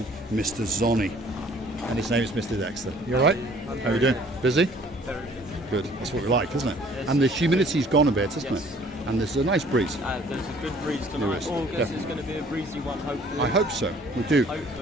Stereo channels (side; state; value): both; normal; correlation 0.56